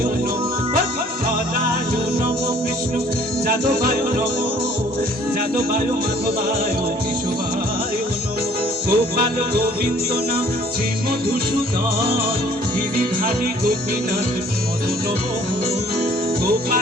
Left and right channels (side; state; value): both; normal; correlation 0.56